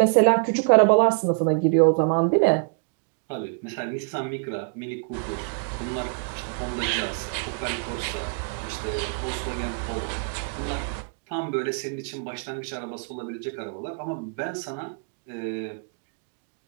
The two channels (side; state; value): left; quieter; 39.7 dB